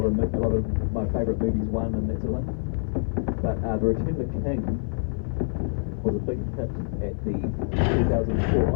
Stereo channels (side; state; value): right; silent; 56 dB below the other